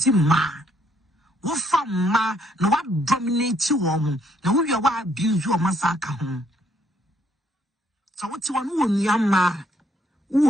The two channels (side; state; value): both; normal; correlation 0.69